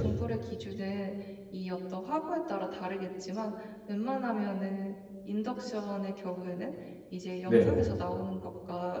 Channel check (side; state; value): both; identical; correlation 1.00